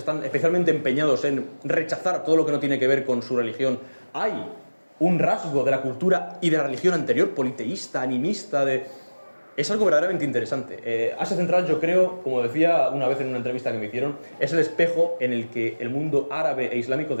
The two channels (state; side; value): inverted; both; correlation -1.00